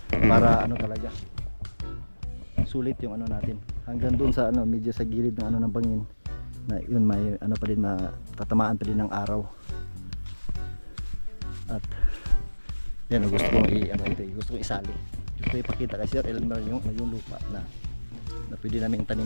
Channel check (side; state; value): both; inverted; correlation -1.00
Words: para talaga sulit yung natin, hanggang doon sa medyo sa gilid ng ng bangin, na yun may pa din, matatamaan pa din ng araw. At yan, gusto kong gusto kong isali, gusto kong ipakita kay Sir Elmer yung lupa na pwede namin